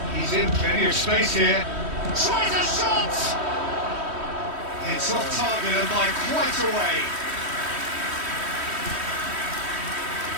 He's in plenty of space here. Tries a shot! It's off target and by quite a way.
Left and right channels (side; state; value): left; late; 3.1 ms